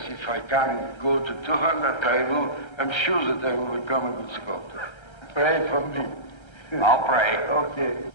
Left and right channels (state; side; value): late; right; 1.3 ms